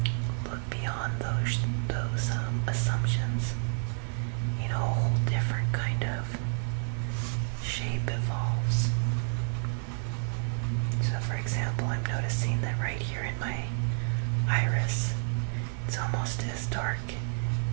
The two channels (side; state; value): left; silent; 58 dB below the other